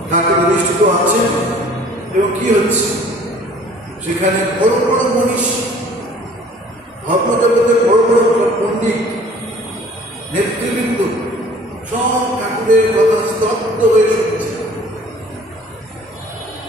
ঢাকা প্রতিষ্ঠিত আছে এবং কি হচ্ছে সেখানে বড় বড় মনীষ, ধর্মজগতের বড় বড় পণ্ডিত, নেতৃবৃন্দ সব ঠাকুরের কথা স্তব্ধ হয়ে শুনছে,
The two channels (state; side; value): normal; both; correlation 0.51